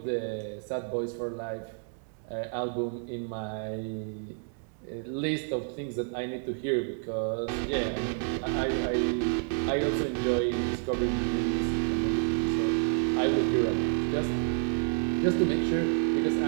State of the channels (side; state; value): left; silent; 58 dB below the other